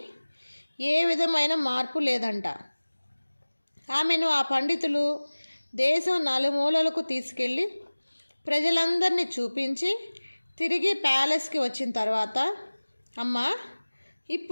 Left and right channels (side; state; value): both; inverted; correlation -1.00